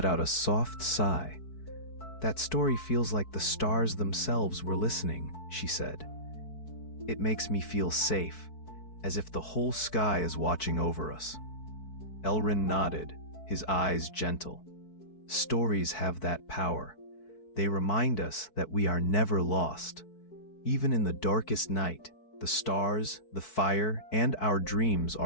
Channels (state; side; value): late; right; 4.6 ms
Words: out a soft sigh. That story feels like the stars themselves were listening, she said. It makes me feel safe, as if the whole sky is watching over us. Elrin nodded, his eyes gentle. Stories have that power. They remind us that we are never lost. Even in the darkest night, the stars, the fire, and our dreams